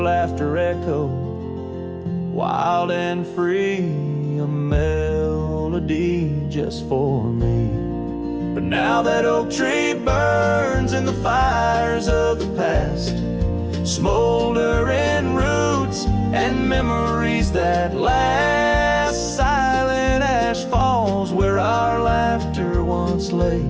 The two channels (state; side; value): identical; both; correlation 1.00